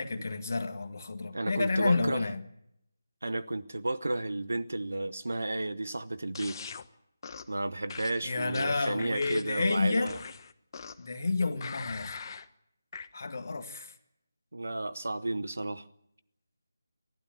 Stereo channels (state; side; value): inverted; both; correlation -0.92